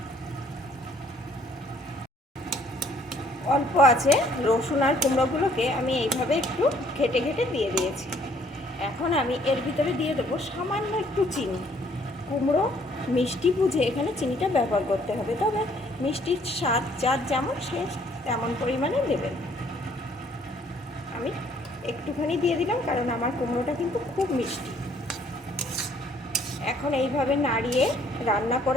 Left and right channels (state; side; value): normal; both; correlation 0.62